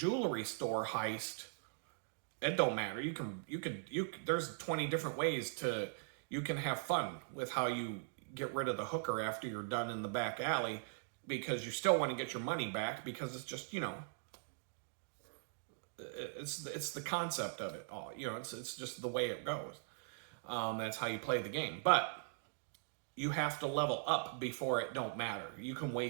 store heist, it don't matter. There's 20 different ways you can have fun with how you get rid of the hooker after you're done in the back alley, because you still want to get your money back, because it's just, it's the concept of it all. It's just the way it goes. That's how you play the game. But you have to level up before it don't matter. You can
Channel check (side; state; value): left; silent; digital silence